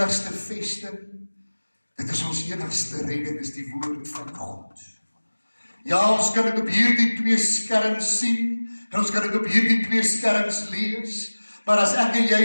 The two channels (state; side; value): inverted; both; correlation -1.00